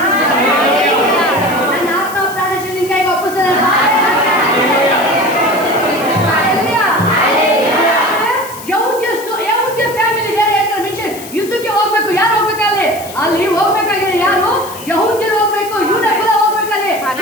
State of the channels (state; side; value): noise; left; hiss, 15 dB below the sound